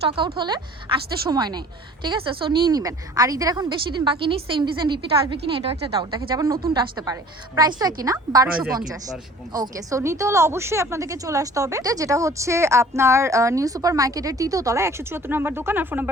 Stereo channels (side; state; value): both; normal; correlation 0.48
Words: আউট হলে আসতে সময় নেই, ঠিক আছে। সো নিয়ে নেবেন। আর ঈদের এখন বেশি দিন বাকি নেই, সেম ডিজাইন রিপিট আসবে কিনা এটাও একটা ডাউট দেখে, যেমন নতুনটা আসতে পারে। প্রাইস তো একই না, 1250। ওকে, সো নিতে হলে অবশ্যই আপনাদেরকে চলে আসতে হবে, যেটা হচ্ছে আপনার নিউ সুপার মার্কেটের 3য় তলায় 174 নম্বর দোকান। আর ফোন